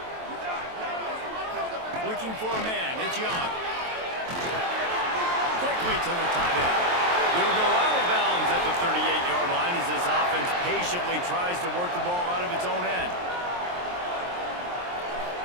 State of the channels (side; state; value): left; late; 23 ms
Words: Looking for a man, it's Young. Quickly to the tight end. He'll go out of bounds at the 38-yard line as this offense patiently tries to work the ball out of its own end.